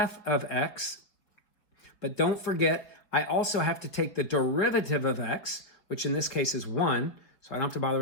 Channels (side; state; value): right; late; 5.0 ms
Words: of x. But don't forget, I also have to take the derivative of x, which in this case is 1, so I don't have to bother